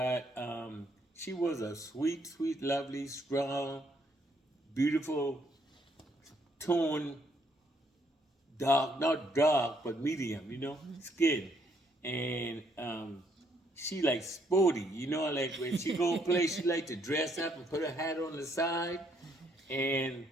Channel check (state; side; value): normal; both; correlation 0.70